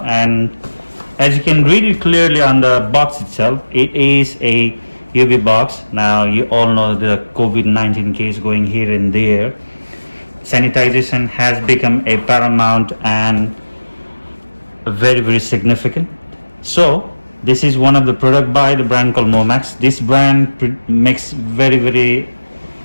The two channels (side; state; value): both; inverted; correlation -1.00